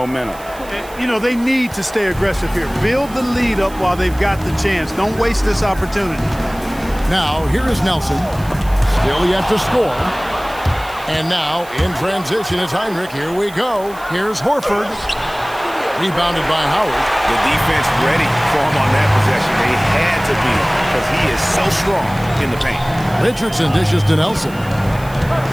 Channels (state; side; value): noise; right; hiss, 20 dB below the sound